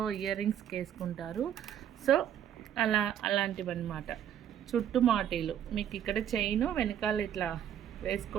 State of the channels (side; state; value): left; quieter; 10.0 dB